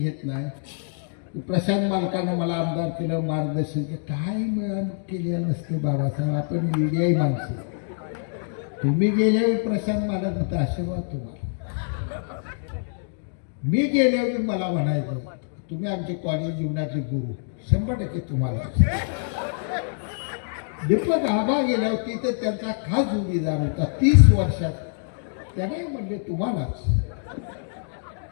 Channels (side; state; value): right; silent; digital silence